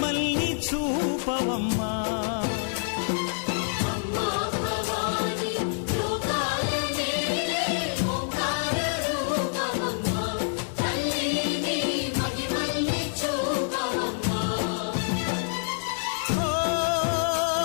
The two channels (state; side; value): silent; right; digital silence